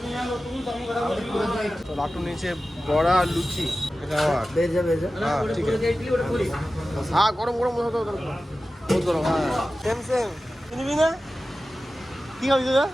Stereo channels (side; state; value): both; normal; correlation 0.95